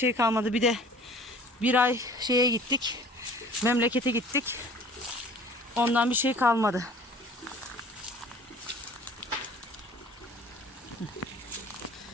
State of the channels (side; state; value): both; normal; correlation 0.49